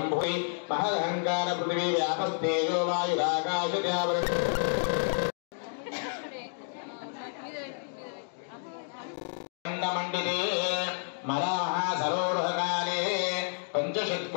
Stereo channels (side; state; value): right; silent; digital silence